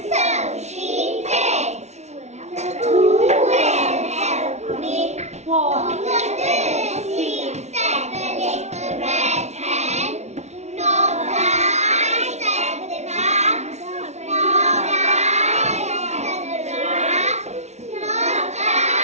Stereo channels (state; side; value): late; left; 0.32 ms